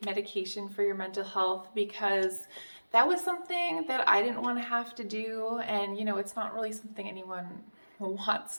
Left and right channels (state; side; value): inverted; both; correlation -1.00